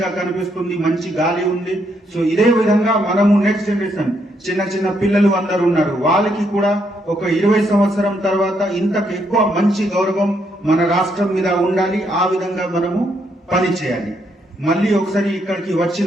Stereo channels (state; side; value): normal; both; correlation 0.75